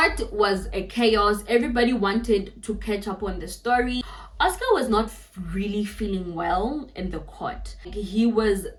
was a chaos. Everybody wanted to catch up on the story. Oscar was not really feeling well in the court. He was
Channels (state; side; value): identical; both; correlation 1.00